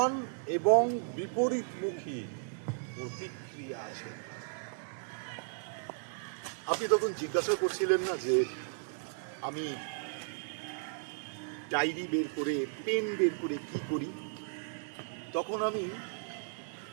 এবং বিপরীতমুখী প্রতিক্রিয়া আছে। আপনি তখন জিজ্ঞাসা করছিলেন না যে আমি ডায়েরি বের করে, পেন বের করে কি করি। তখন আমি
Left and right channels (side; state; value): left; silent; digital silence